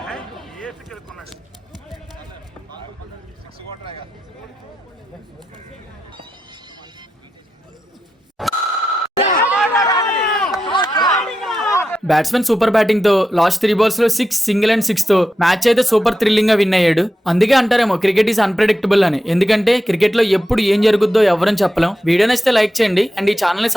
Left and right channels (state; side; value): normal; both; correlation 0.89